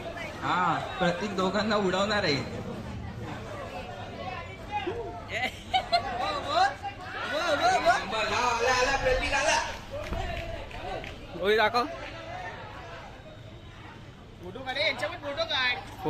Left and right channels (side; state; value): both; identical; correlation 1.00